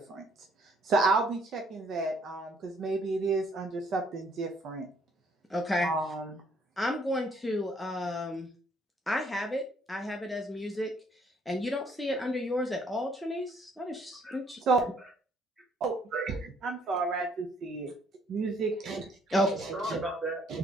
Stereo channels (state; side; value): normal; both; correlation 0.65